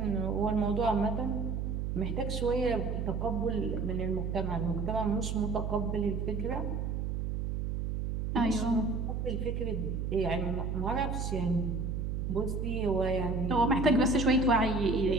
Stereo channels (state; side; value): noise; right; hum, 2 dB below the sound